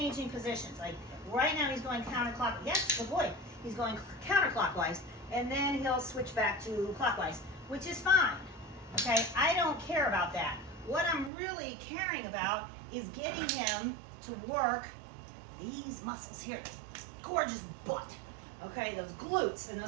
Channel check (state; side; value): drops out; left; at 11.3 s